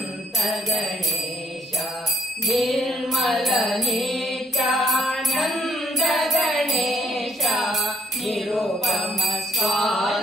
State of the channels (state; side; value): normal; both; correlation 0.66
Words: ಗಣೇಶ ನಿರ್ಮಲ ನಿತ್ಯಾನಂದ ಗಣೇಶ ನಿರುಪಮ